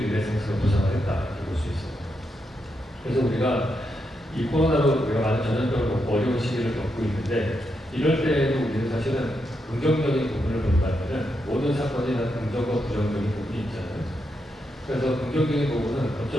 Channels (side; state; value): both; normal; correlation 0.83